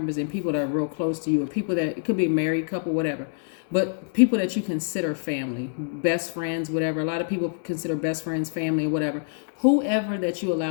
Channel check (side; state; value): right; silent; digital silence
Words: and people that are real close to you, or people that, it could be a married couple, whatever. But people that you consider family, best friends, whatever. A lot of people consider best friends family or whatever. Whoever that you